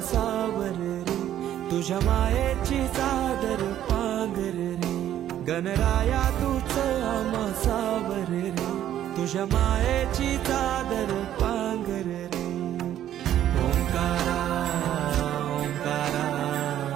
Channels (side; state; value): left; quieter; 11.5 dB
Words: सावर रे, तुझ्या मायेची चादर पांघर रे. गणराया तूच आम्हा सावर रे, तुझ्या मायेची चादर पांघर रे. ओंकारा ओंकारा